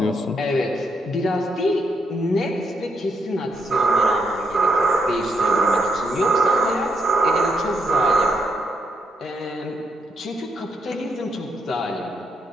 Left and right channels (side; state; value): both; normal; correlation 0.77